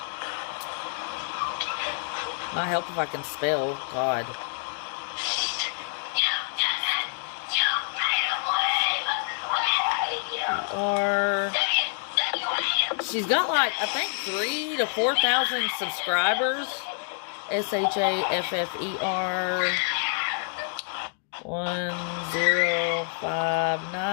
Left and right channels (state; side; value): silent; right; digital silence